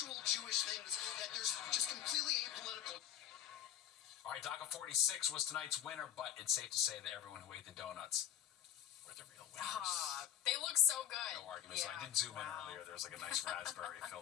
Jewish things that there's just completely apolitical. All right, DACA 46 was tonight's winner, but it's safe to say that everyone who ate the donuts were the real winners. They look so good. No arguments. Yeah. I did zoom in earlier. There's like a nice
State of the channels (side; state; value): right; quieter; 10.9 dB